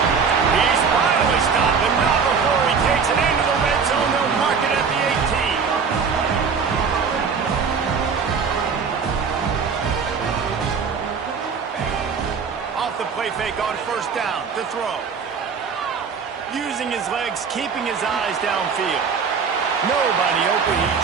He's finally stopped, but not before he takes it into the red zone. They'll mark it at the 18. Off the play fake on 1st down to throw. Using his legs, keeping his eyes downfield. Nobody open, he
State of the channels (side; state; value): left; quieter; 5.8 dB